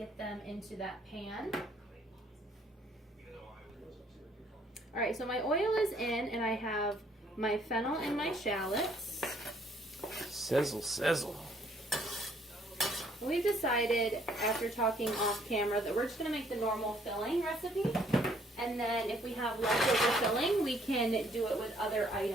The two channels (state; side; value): normal; both; correlation 0.64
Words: them into that pan. Alright, so my oil is in, and I have my fennel and my shallots. Sizzle, sizzle. We've decided, after talking off camera, that we're just going to make the normal filling recipe. And then if we have leftover filling, we can do it with other